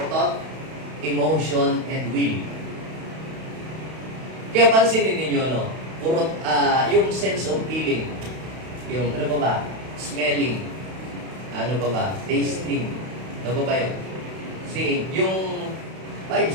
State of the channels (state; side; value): late; left; 31 ms